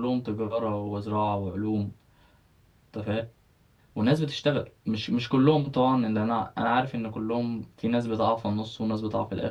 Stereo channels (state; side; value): identical; both; correlation 1.00